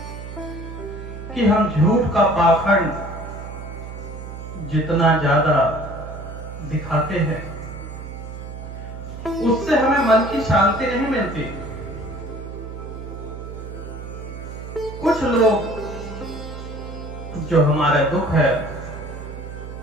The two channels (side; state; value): right; noise; hum, 10 dB below the sound